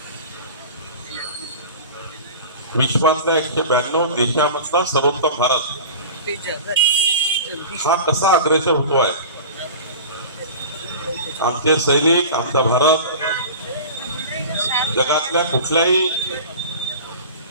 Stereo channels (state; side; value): inverted; both; correlation -0.36